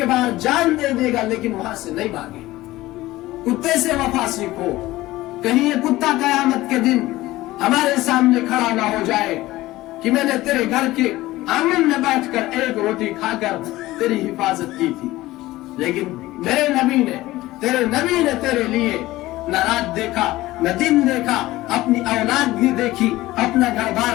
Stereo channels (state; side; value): quieter; right; 17.5 dB